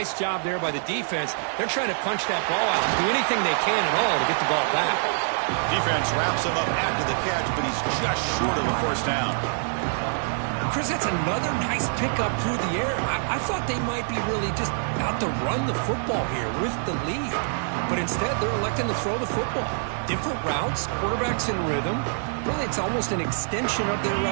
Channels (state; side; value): silent; left; digital silence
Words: job there by the defense. They're trying to punch that ball out and do anything they can at all to get the ball back. Defense wraps him up after the catch, but he's just short of a first down. Chris, that's another nice pickup through the air. I thought they might be really just out to run the football here with the lead. But instead, they're electing to throw the football. Different routes, quarterbacks in rhythm. Really, it's almost an extension of their